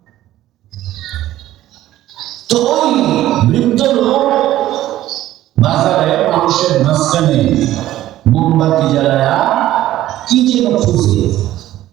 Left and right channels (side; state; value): left; quieter; 14.1 dB